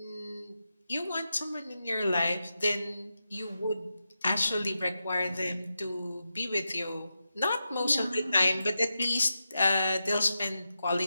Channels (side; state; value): both; inverted; correlation -0.89